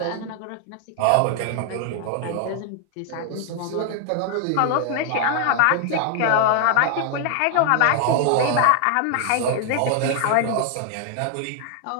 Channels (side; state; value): both; different; correlation 0.00